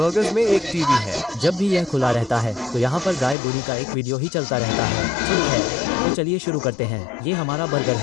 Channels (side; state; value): right; drops out; at 3.4 s